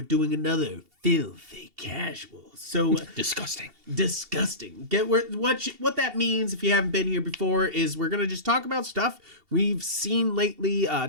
doing another filthy casual. So Disgusting. What that means, if you haven't been here before, is we're gonna just talk about stuff we've seen lately,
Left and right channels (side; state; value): left; late; 2.7 ms